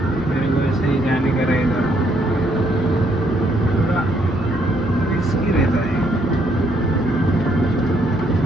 मेरे को ऐसे ही जाने का रहेगा। थोड़ा रिस्की रहता है,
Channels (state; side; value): normal; both; correlation 0.71